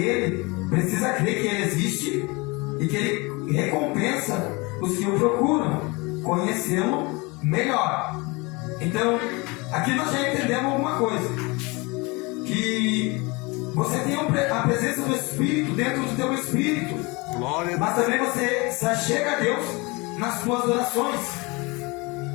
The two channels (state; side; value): quieter; right; 26.2 dB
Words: precisa crer que Ele existe e que Ele recompensa os que o procuram conhecê-lo melhor. Então, aqui nós já entendemos alguma coisa, que você tem a presença do Espírito dentro do teu Espírito, mas também você se achega a Deus nas suas orações.